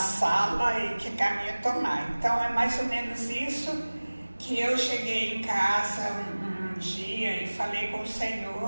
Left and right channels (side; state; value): both; inverted; correlation -1.00